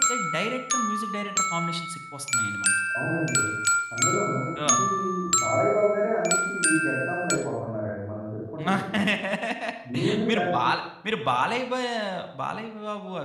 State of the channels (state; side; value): identical; both; correlation 1.00